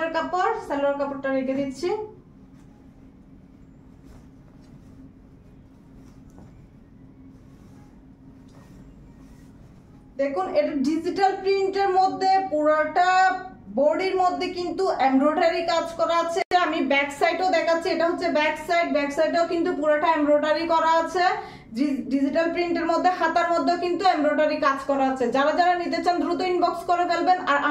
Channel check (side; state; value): both; identical; correlation 1.00